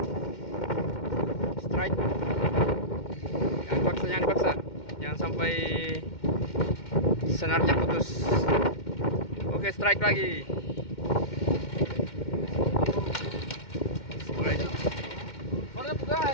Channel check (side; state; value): right; late; 2.1 ms